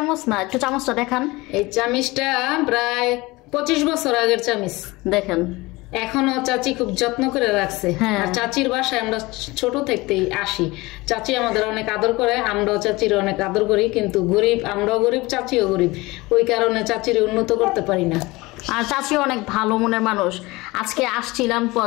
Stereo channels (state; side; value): quieter; right; 21.9 dB